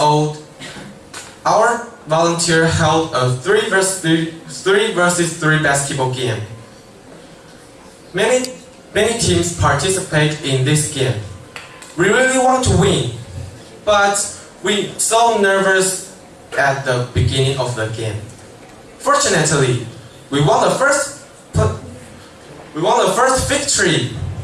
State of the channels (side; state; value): both; identical; correlation 1.00